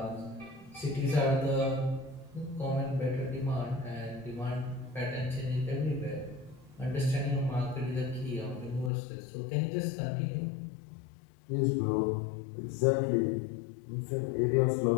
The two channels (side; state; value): right; drops out; at 8.9 s